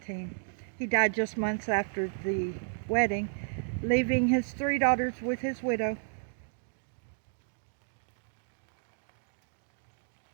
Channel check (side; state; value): left; silent; digital silence